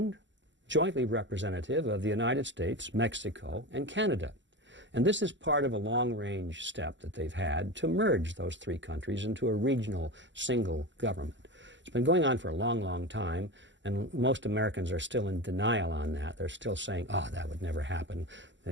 jointly representative of the United States, Mexico, and Canada. And this is part of a long-range step that they've had to merge those three countries into a regional single government. It's been going on for a long, long time, and most Americans are still in denial on that. They're still saying, oh, that would never happen.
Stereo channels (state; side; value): late; left; 0.54 ms